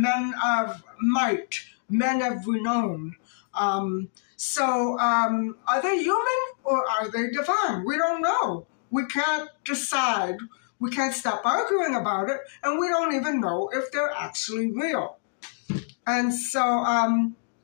of might, men of renown. So are they human or are they divine? We don't know. We can't decide. We can't stop arguing about it, and we don't even know if they're actually real. And so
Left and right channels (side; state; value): right; silent; digital silence